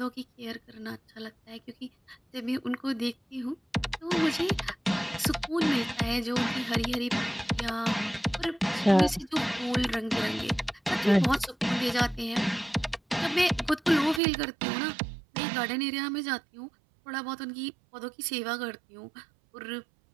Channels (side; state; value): left; drops out; at 14.2 s